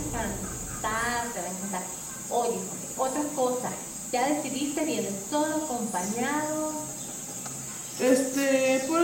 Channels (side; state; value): both; identical; correlation 1.00